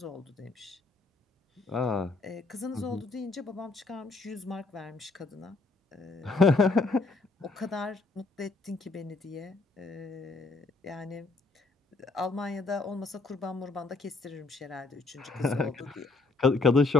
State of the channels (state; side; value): quieter; right; 3.5 dB